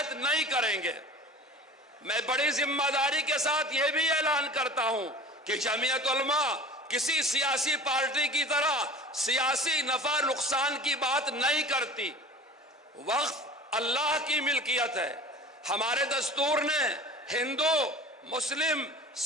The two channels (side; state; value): both; normal; correlation 0.39